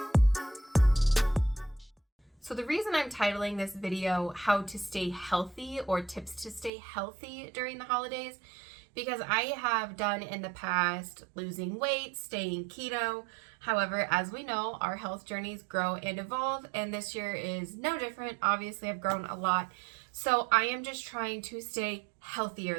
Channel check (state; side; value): drops out; left; at 6.7 s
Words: So the reason I'm titling this video How to Stay Healthy or Tips to Stay Healthy During the Holidays, because I have done in the past losing weight, staying keto. However, as we know, our health journeys grow and evolve, and this year is no different. Obviously, I've grown a lot. So I am just trying to stay